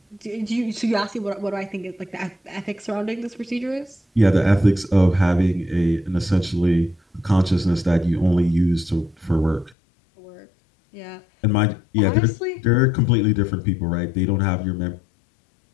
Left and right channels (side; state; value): right; drops out; at 9.8 s